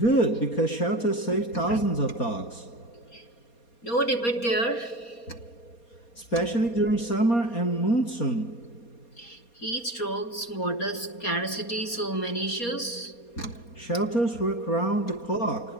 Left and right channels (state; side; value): late; right; 4.2 ms